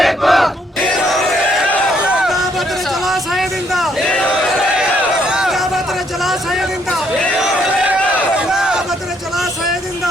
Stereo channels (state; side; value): normal; both; correlation 0.70